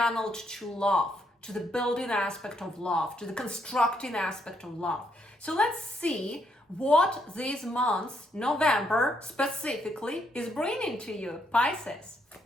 to love, to the building aspect of love, to the constructing aspect of love. So let's see what this month, November specifically, is bringing to you, Pisces.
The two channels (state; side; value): normal; both; correlation 0.75